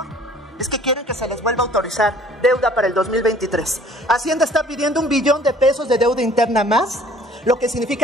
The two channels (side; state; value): both; normal; correlation 0.53